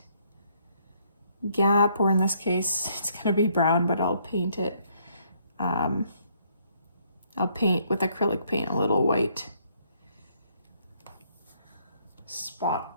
gap, or in this case, it's gonna be brown, but I'll paint it. I'll paint with acrylic paint a little white spot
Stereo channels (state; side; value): inverted; both; correlation -0.68